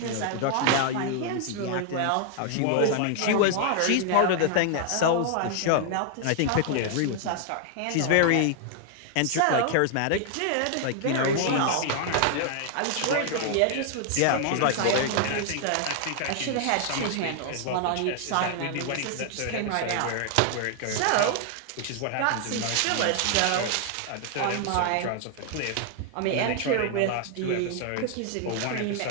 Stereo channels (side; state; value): both; different; correlation 0.00